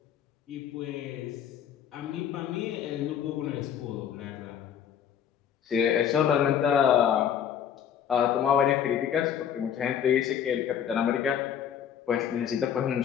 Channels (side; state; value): right; quieter; 8.9 dB